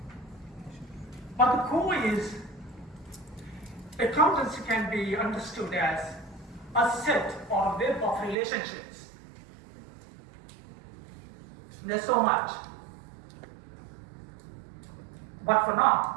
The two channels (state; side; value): drops out; left; at 8.3 s